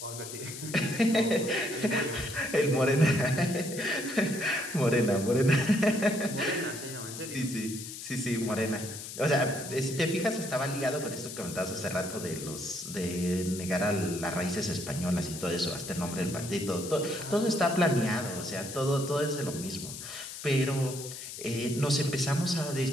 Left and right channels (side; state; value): left; noise; hiss, 10 dB below the sound